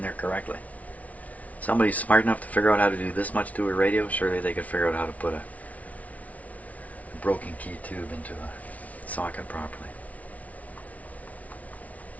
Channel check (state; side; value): late; right; 0.069 ms